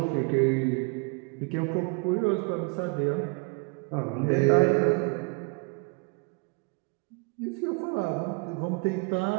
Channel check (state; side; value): quieter; left; 32.7 dB